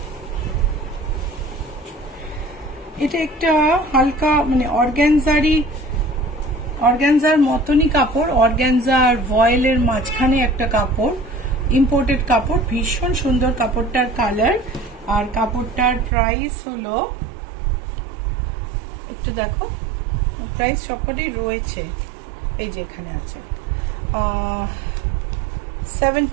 এটা একটা হালকা মানে অর্গানজার মতনই কাপড়, অর্গানজা আর ভয়েলের মাঝখানে একটা কাপড়, ইম্পোর্টেড কাপড়, ভীষণ সুন্দর কাপড়টার কালার। আর কাপড়টার প্রাইস হলো, একটু দেখো প্রাইস সবকটাই রয়েছে, এই যে এখানে আছে,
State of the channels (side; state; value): left; drops out; at 16.1 s